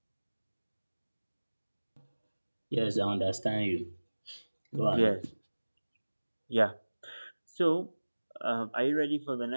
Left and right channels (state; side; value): inverted; both; correlation -1.00